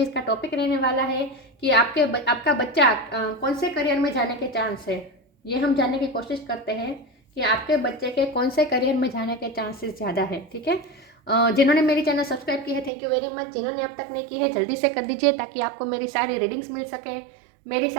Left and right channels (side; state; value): left; drops out; at 12.9 s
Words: टॉपिक रहने वाला है कि आपका बच्चा कौन से करियर में जाने के चांस है। ये हम जानने की कोशिश करते हैं कि आपके बच्चे के कौन से करियर में जाने के चांसेस ज़्यादा है। ठीक है। जिन्होंने मेरी चैनल सब्सक्राइब की है, थैंक यू वेरी मच। जिन्होंने अब तक नहीं की है, जल्दी से कर दीजिए ताकि आपको मेरी सारी रीडिंग्स मिल सके। मेरी